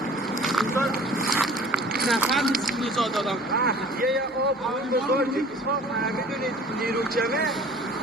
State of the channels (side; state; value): both; normal; correlation 0.48